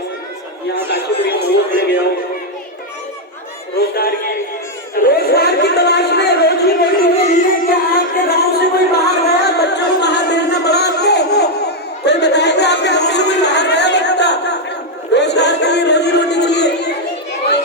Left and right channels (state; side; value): normal; both; correlation 0.01